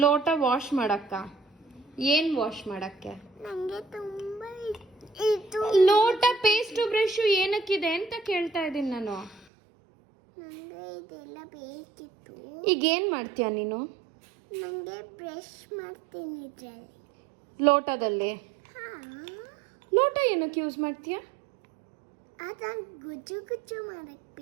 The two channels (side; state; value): left; drops out; at 9.5 s